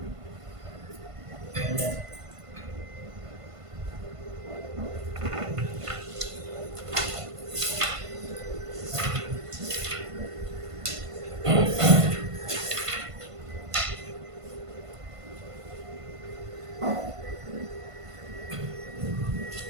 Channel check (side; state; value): left; late; 1.5 ms